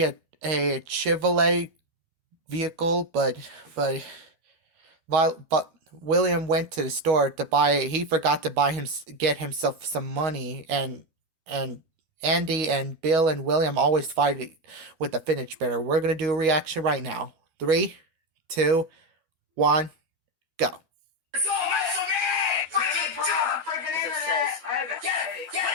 a Chevrolet vehicle, but William went to the store to buy. He forgot to get himself some money, and Andy and Bill and William always fight with the fidget spinner. We're gonna do a reaction right now. Three, two, one, go.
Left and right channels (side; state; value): left; late; 13 ms